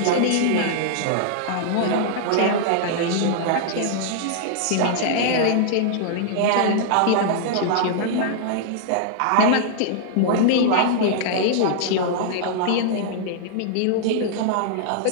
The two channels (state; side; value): different; both; correlation -0.01